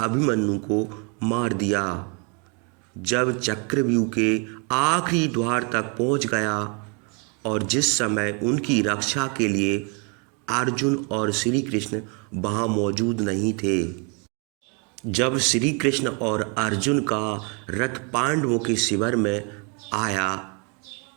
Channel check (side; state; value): left; quieter; 35.0 dB